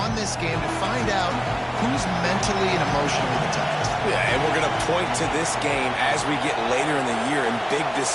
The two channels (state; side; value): identical; both; correlation 1.00